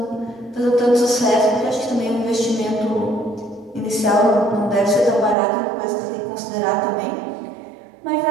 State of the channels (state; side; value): drops out; left; at 5.4 s